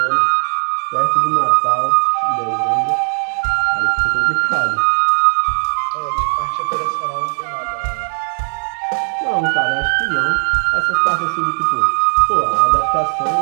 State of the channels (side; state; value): left; silent; 59 dB below the other